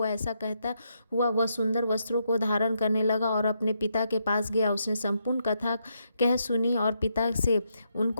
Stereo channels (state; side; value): inverted; both; correlation -0.79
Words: ऐसा कहता हुआ वह सुंदर वस्त्रों को धारण करने लगा और अपने पिता के पास गया। उसने संपूर्ण कथा कह सुनी और पिता से